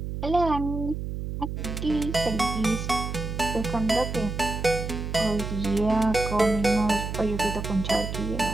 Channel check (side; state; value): right; noise; hum, 5 dB below the sound